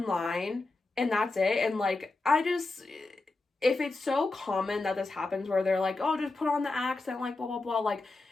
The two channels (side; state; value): right; quieter; 3.3 dB